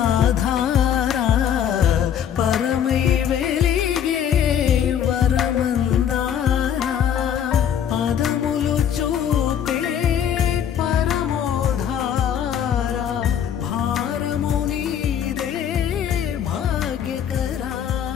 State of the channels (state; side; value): quieter; right; 9.1 dB